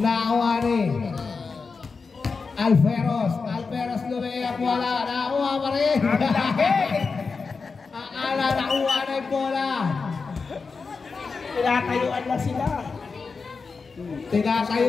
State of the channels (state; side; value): quieter; right; 4.7 dB